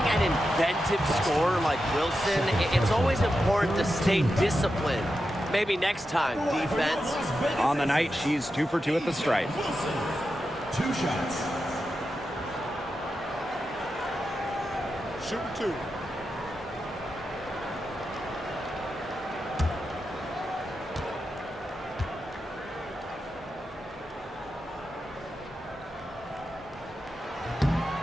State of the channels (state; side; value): normal; both; correlation 0.89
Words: inventive scorer like Wilson, it's always important to stay disciplined. Maybe next time, defense. On the night, she's 2 for 2 at the stripe. 2 shots. Shooting 2.